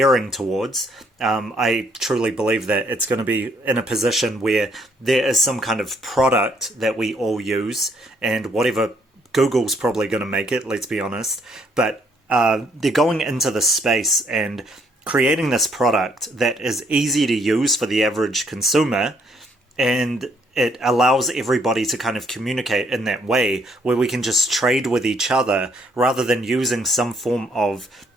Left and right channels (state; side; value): normal; both; correlation 0.68